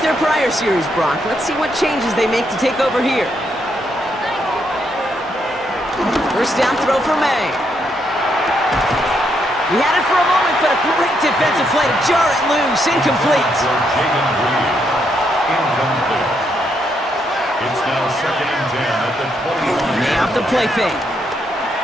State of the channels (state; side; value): normal; both; correlation 0.77